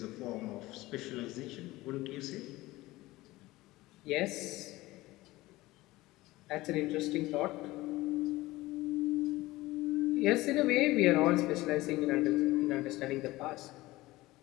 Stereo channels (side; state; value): right; quieter; 18.9 dB